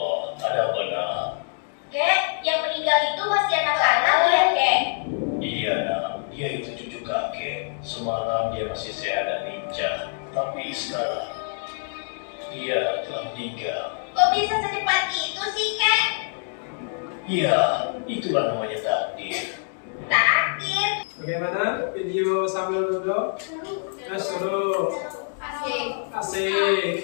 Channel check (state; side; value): silent; right; digital silence